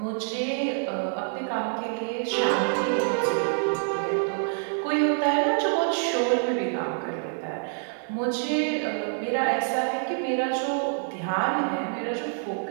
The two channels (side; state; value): left; silent; digital silence